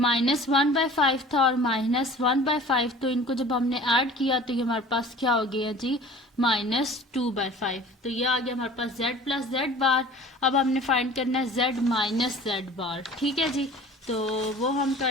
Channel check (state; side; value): normal; both; correlation 0.44